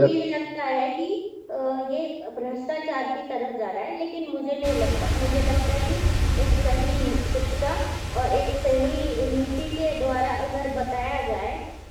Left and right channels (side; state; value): both; identical; correlation 1.00